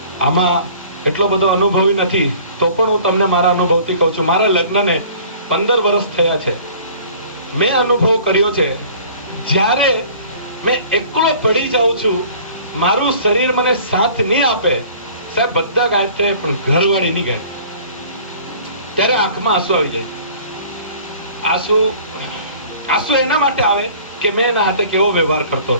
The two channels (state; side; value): inverted; both; correlation -0.49